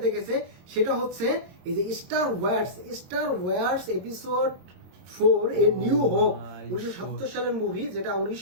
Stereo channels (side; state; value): left; late; 22 ms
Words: দেখেছে সেটা হচ্ছে এই যে Star Wars episode 4 a new hope. 1970 সালের মুভি, যেটা